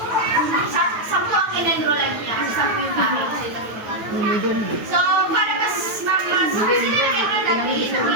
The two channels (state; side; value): late; left; 9.2 ms